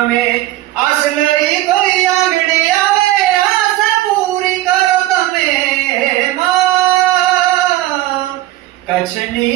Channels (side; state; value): left; quieter; 15.9 dB